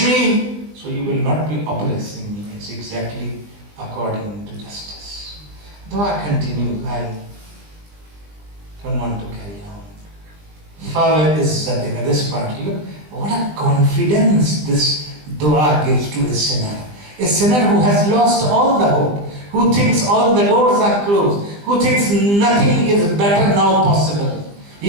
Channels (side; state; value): left; late; 20 ms